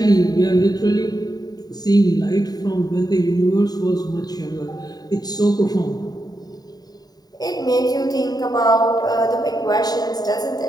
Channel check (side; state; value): right; late; 0.19 ms